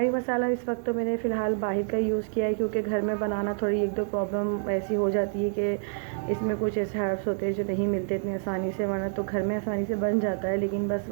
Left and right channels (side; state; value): left; silent; 57 dB below the other